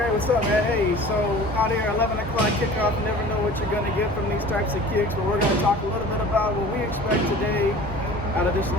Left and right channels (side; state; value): both; normal; correlation 0.43